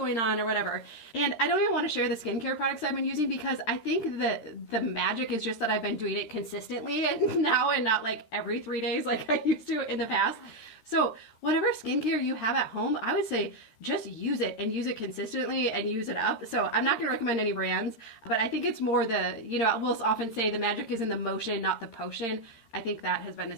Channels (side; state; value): right; late; 13 ms